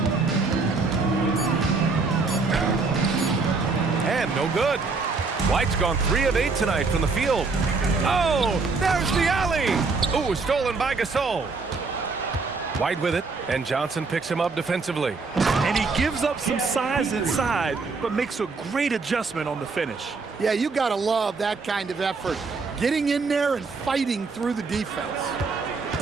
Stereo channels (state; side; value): quieter; left; 4.2 dB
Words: And no good. White's gone 3 of 8 tonight from the field. Oh, there's the alley. Ooh, stolen by Gasol. White with it, and Johnson picks him up defensively. And he gives up some size inside, but makes a great adjustment on the finish. Yeah, you got to love that kind of effort. Getting in there and fighting through the defense.